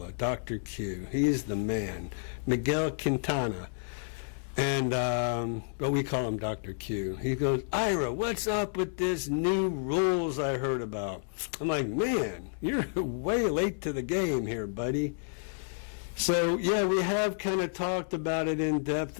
Dr. Q, he's the man. Miguel Quintana. And, but we call him Dr. Q. He goes, Ira, what's up with this new rules I heard about? I'm like, man, you're way late to the game here, buddy. So, yeah, we have kind of talked about it in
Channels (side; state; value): right; silent; digital silence